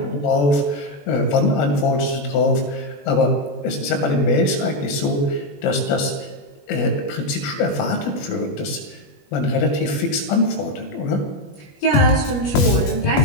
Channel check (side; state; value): right; late; 21 ms